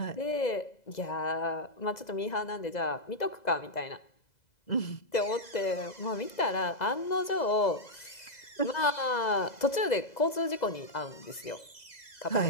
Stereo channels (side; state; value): right; late; 2.0 ms